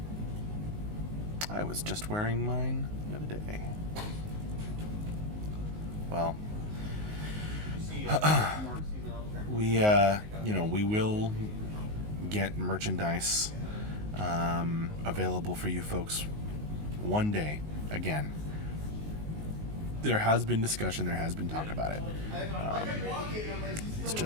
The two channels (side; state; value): left; late; 19 ms